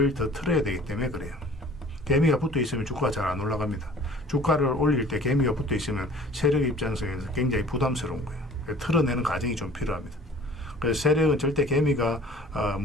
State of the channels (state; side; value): normal; both; correlation 0.49